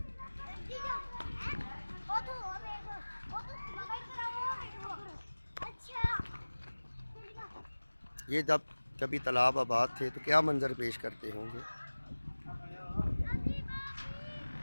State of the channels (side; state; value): both; inverted; correlation -1.00